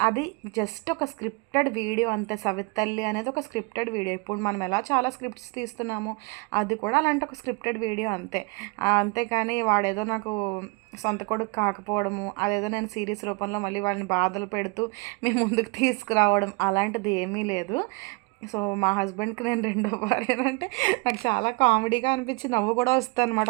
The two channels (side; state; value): left; quieter; 29.1 dB